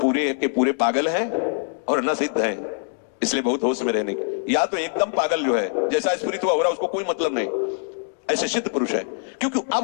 के पूरे पागल हैं और न सिद्ध हैं, इसलिए बहुत होश में रहने की। या तो एकदम पागल जो है जैसा स्फुरित हुआ हो रहा उसको कोई मतलब नहीं, ऐसे सिद्ध पुरुष है। क्योंकि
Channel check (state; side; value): silent; right; digital silence